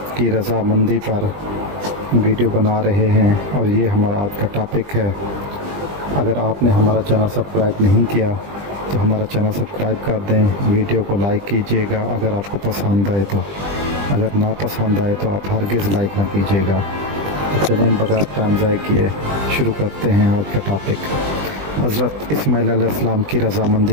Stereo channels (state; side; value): late; left; 20 ms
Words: کی رضامندی پر ویڈیو بنا رہے ہیں، اور یہ ہمارا آج کا ٹاپک ہے۔ اگر آپ نے ہمارا چینل سبسکرائب نہیں کیا تو ہمارا چینل سبسکرائب کر دیں، ویڈیو کو لائک کیجیے گا اگر آپ کو پسند آئے تو، اگر نہ پسند آئے تو آپ ہرگز لائک نہ کیجیے گا۔ تو چلیں بغیر ٹائم ضائع کیے شروع کرتے ہیں آج کا ٹاپک۔ حضرت اسماعیل علیہ السلام کی